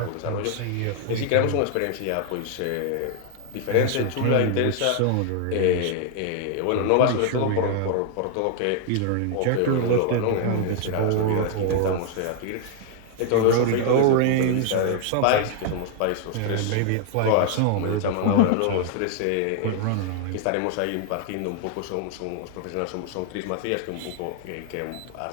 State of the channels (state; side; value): different; both; correlation 0.00